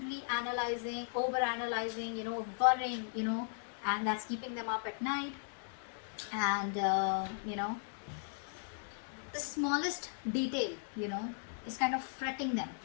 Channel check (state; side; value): silent; right; digital silence